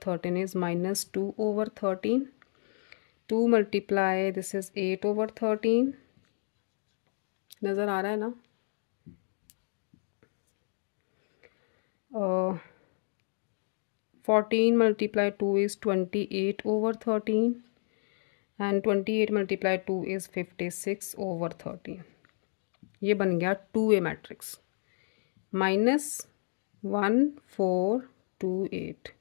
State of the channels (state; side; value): silent; right; digital silence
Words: is -2/13. 2 multiply this is 8/13. नज़र आ रहा है ना? 14 multiply 2 is 28/13 and 28 multiply 2 is 56/13. ये बन गया 2A मैट्रिक्स -1428.